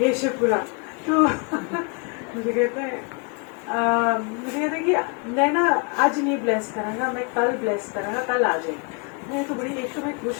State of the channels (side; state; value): right; quieter; 34.6 dB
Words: ये शिवपुराण। तो मुझे कहते हैं कि मैं ना आज नहीं ब्लेस करांगा, मैं कल ब्लेस करांगा, कल आ जाए। मैं तो बड़ी, एक तो मैं खुश,